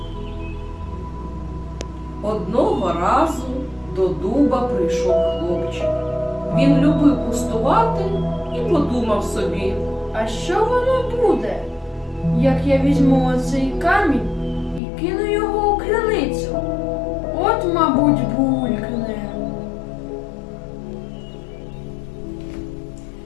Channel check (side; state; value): right; drops out; at 14.8 s